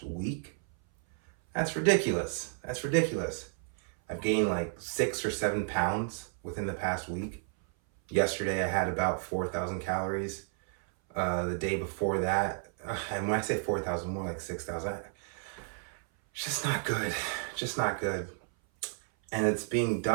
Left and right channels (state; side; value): silent; left; 56 dB below the other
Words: week. That's ridiculous. That's ridiculous. I've gained like 6 or 7 pounds within the past week. Yesterday I had about 4,000 calories. The day before that, and when I say 4,000, more like 6,000. It's just not good. Just not good. And it's being